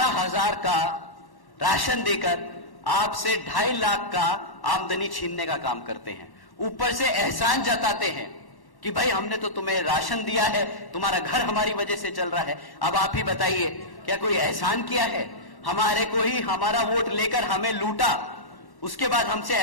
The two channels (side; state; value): right; late; 1.1 ms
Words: का राशन देकर आपसे 2.5 लाख का आमदनी छीनने का काम करते हैं। ऊपर से एहसान जताते हैं कि भाई हमने तो तुम्हें राशन दिया है, तुम्हारा घर हमारी वजह से चल रहा है। अब आप ही बताइए, क्या कोई एहसान किया है? हमारे को ही हमारा वोट लेकर हमें लूटा, उसके बाद हमसे